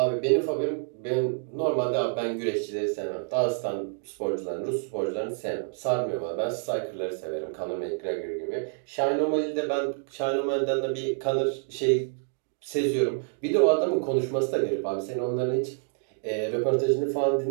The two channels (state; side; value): silent; left; 60 dB below the other